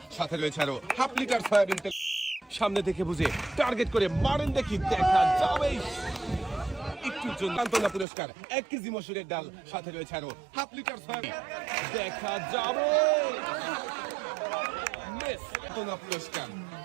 সাথে রয়েছে আরো হাফ লিটার সয়াবিন তেল। সামনে থেকে বুঝে টার্গেট করে মারেন, দেখি দেখা যাবে। একটুর জন্য সান্ত্বনা পুরস্কার 1 কেজি মসুরের ডাল, সাথে রয়েছে আরো হাফ লিটার সয়াবিন, দেখা যাবে। মিস সান্ত্বনা পুরস্কার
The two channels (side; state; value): left; drops out; at 8.1 s